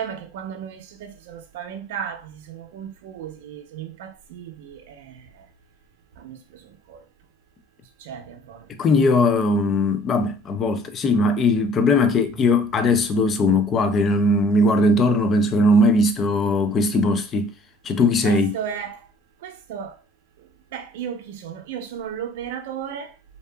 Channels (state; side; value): normal; both; correlation 0.55